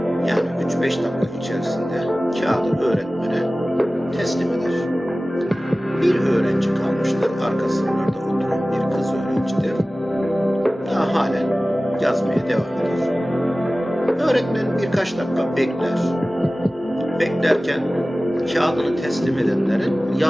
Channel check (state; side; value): normal; both; correlation 0.97